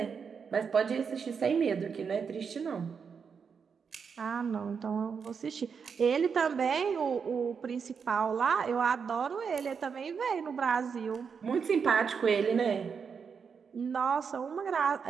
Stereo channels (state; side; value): quieter; left; 6.2 dB